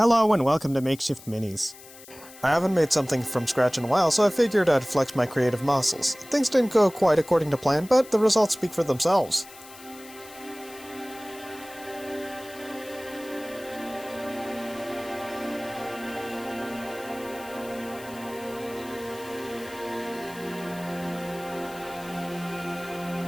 and welcome to Makeshift Minis. I haven't made something from scratch in a while, so I figured I'd flex my creative muscles. Things didn't go quite according to plan, but the results speak for themselves.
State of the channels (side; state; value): left; noise; hiss, 19 dB below the sound